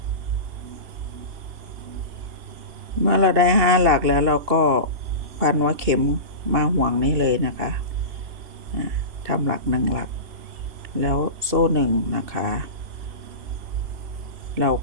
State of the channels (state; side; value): late; left; 2.7 ms